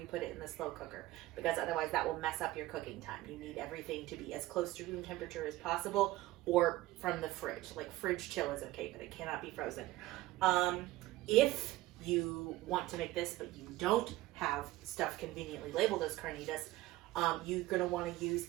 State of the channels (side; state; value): left; quieter; 17.3 dB